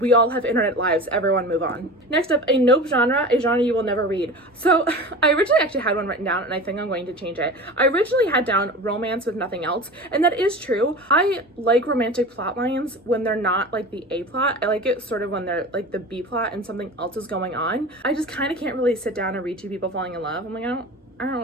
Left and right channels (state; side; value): normal; both; correlation 0.33